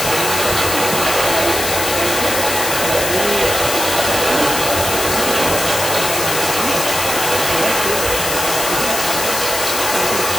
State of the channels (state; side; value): noise; left; hiss, 2 dB below the sound